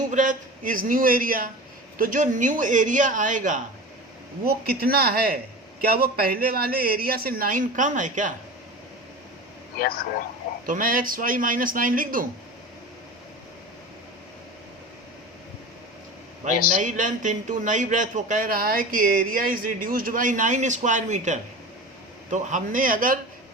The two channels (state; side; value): normal; both; correlation 0.32